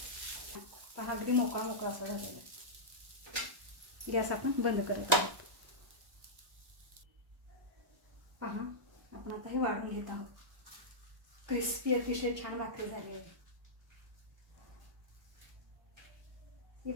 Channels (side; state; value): left; late; 1.1 ms